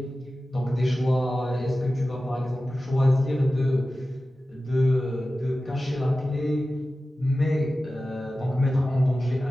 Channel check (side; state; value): both; normal; correlation 0.95